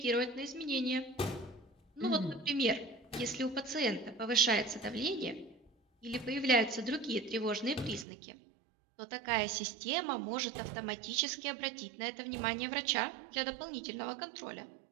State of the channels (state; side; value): drops out; left; at 8.1 s